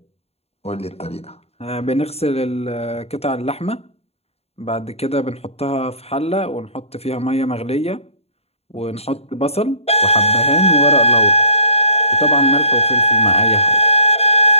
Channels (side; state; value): right; late; 0.30 ms